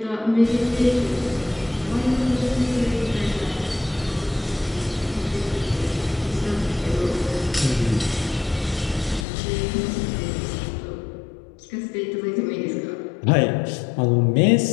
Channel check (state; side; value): drops out; right; at 9.2 s